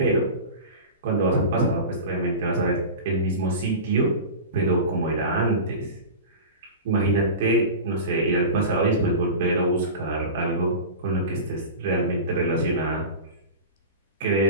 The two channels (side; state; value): both; inverted; correlation -0.30